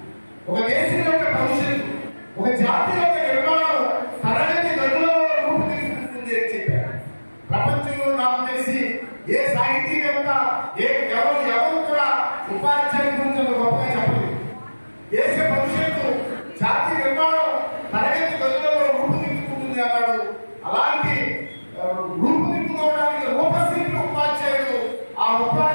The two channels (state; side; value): inverted; both; correlation -1.00